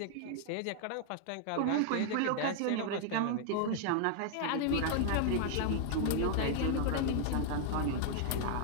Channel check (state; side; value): different; both; correlation 0.00